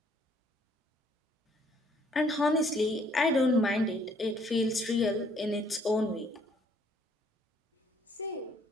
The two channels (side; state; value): both; normal; correlation 0.64